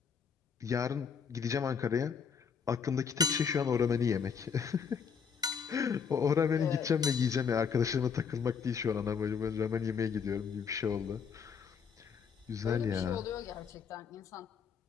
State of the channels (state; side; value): quieter; right; 6.5 dB